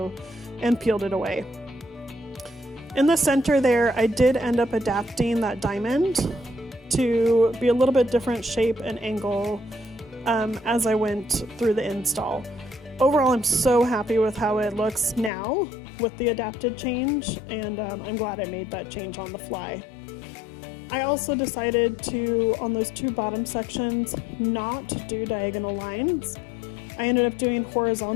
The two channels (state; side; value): drops out; right; at 15.3 s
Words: and peeled it away. In the center there, I did end up adapting that diamond to be a little bit different shape and angle as I went through the install. Overall, I'm so happy with how it looks now with the adapted change, and I'm glad I made that change on the fly. I also decided to, on those two bottom sections, not do diagonal lines. I ended up doing